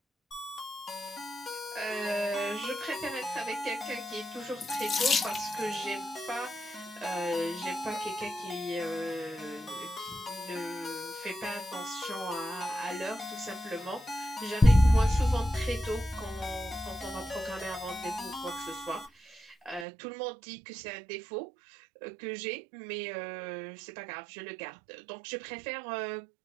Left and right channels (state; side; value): drops out; left; at 19.9 s